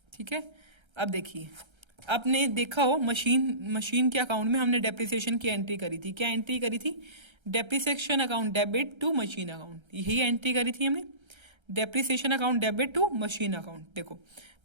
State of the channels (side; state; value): left; late; 1.3 ms